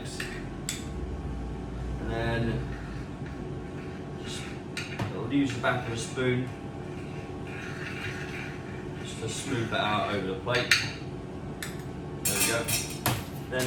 And then just use the back of a spoon just to smooth that out over the plate. There we go.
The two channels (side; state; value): both; identical; correlation 1.00